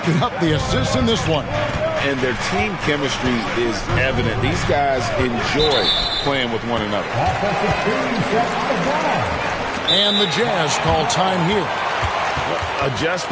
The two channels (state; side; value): identical; both; correlation 1.00